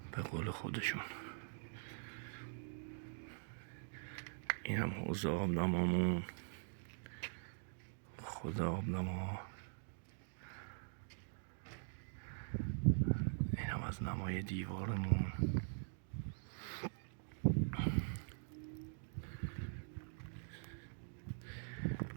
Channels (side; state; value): left; silent; digital silence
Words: به قول خودشون. این هم حوض آبنمامون، خود آبنما. این هم از نمای دیوارمون.